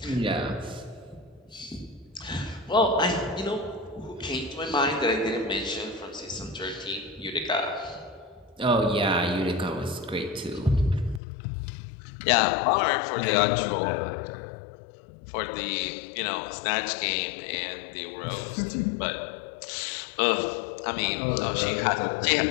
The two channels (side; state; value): right; drops out; at 11.2 s